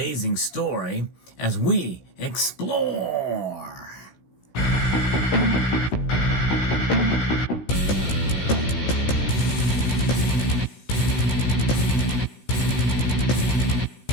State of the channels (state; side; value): late; right; 16 ms